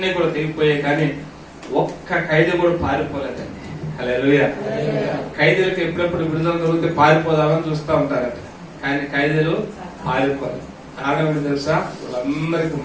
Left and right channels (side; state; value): both; identical; correlation 1.00